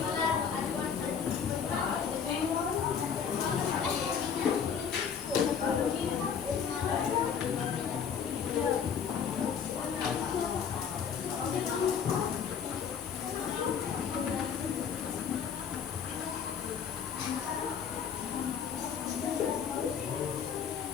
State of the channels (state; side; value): quieter; right; 7.2 dB